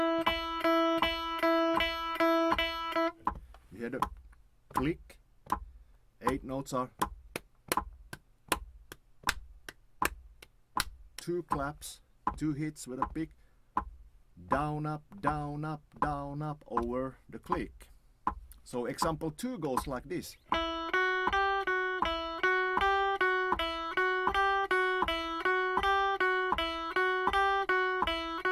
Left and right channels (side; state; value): both; identical; correlation 1.00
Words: You hear the click. 8 notes are 2 claps, 2 hits with a pick. Down, up, down, up, down, up over the click. So example 2 goes like this.